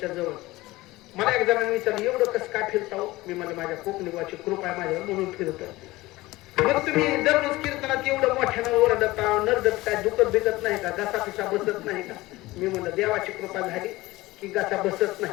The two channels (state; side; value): quieter; right; 19.2 dB